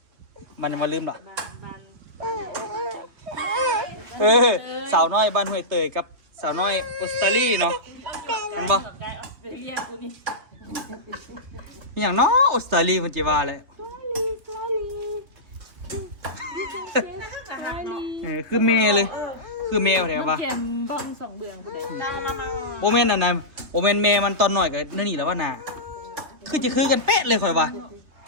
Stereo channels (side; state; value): left; late; 2.9 ms